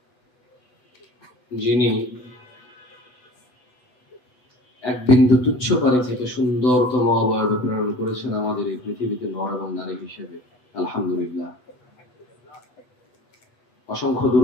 যিনি এক বিন্দু তুচ্ছ পানি থেকে সুন্দরতম অবয়বে প্রেরণ করেছেন আমাদের এই পৃথিবীতে নর এবং নারী হিসেবে। আলহামদুলিল্লাহ। অসংখ্য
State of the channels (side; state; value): right; late; 8.0 ms